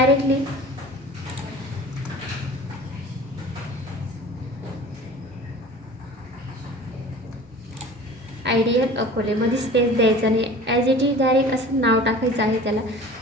आयडियल अकोलेमध्ये स्पेस द्यायचा नाही. ॲज इट इज डायरेक्ट असं नाव टाकायचं आहे त्याला.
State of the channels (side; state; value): both; normal; correlation 0.41